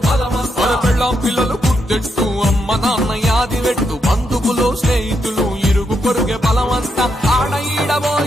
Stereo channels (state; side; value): normal; both; correlation 0.80